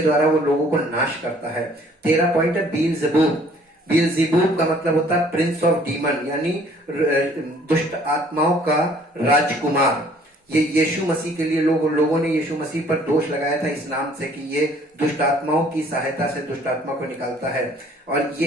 द्वारा वो लोगों को नाश करता है। 13 पॉइंट है बीलज़ेबूब। बीलज़ेबूब का मतलब होता है प्रिंस ऑफ डीमन, यानी दुष्ट आत्माओं का राजकुमार। ये यीशु मसीह के लिए लोगों ने यीशु मसीह पर दोष लगाया था इस नाम से कि ये दुष्ट आत्माओं की सहायता से दुष्ट आत्मा को निकालता है, और ये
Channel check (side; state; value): both; normal; correlation 0.57